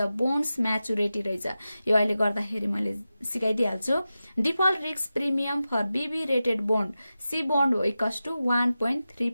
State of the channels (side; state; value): both; inverted; correlation -0.93